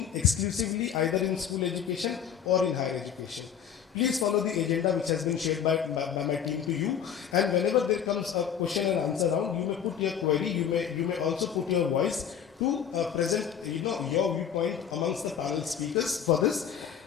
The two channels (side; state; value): right; quieter; 8.3 dB